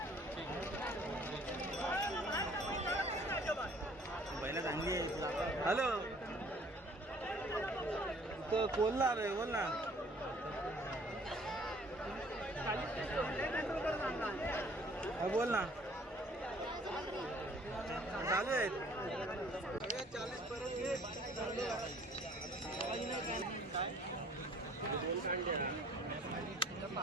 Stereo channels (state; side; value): normal; both; correlation 0.56